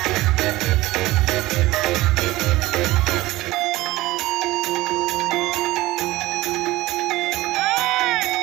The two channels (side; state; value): left; quieter; 18.2 dB